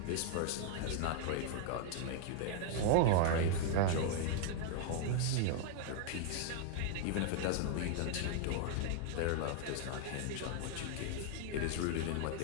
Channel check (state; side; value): different; both; correlation 0.00